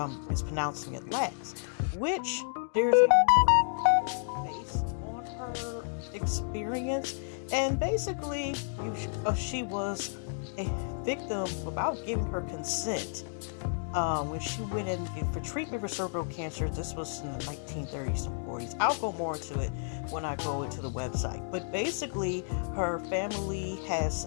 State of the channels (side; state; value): right; silent; digital silence